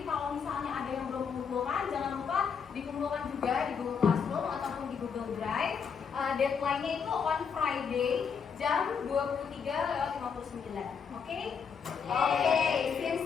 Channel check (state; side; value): quieter; right; 6.4 dB